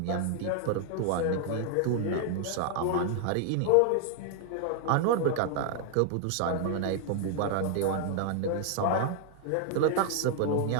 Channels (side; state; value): both; different; correlation 0.00